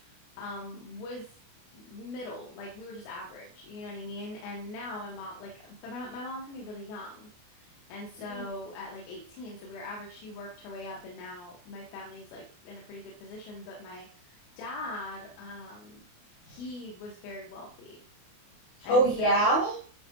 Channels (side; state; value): right; late; 28 ms